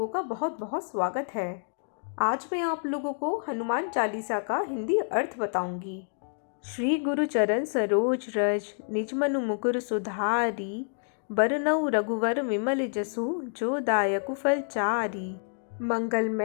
का बहुत बहुत स्वागत है। आज मैं आप लोगों को हनुमान चालीसा का हिंदी अर्थ बताऊंगी। श्री गुरु चरण सरोज रज निज मनु मुकुर सुधारी, बरनउँ रघुवर विमल जसु जो दायकु फल चारी।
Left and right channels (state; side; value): silent; right; digital silence